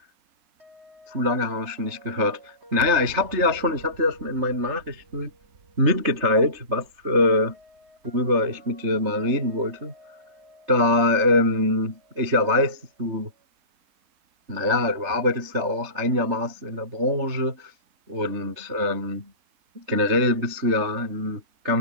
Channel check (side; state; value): left; late; 3.3 ms